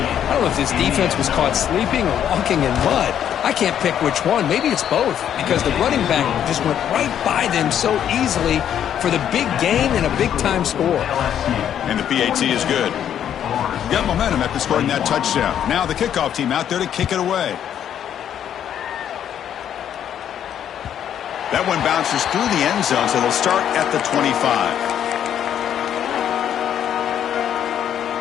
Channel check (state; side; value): quieter; right; 9.7 dB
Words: I don't know if this defense was caught sleeping or walking in mud. I can't pick which one. Maybe it's both, because the running back just went right by them so easily for the big gain and a big-time score. And the PAT is good. Got momentum after scoring that touchdown. Now the kickoff team out there to kick it away. That one bounces through the end zone, so they'll start at the 25.